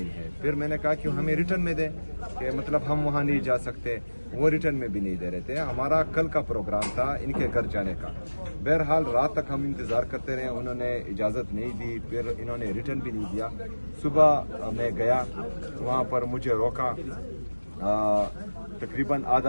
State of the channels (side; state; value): both; inverted; correlation -1.00